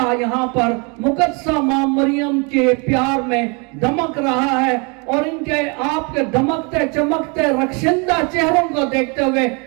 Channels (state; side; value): quieter; left; 32.4 dB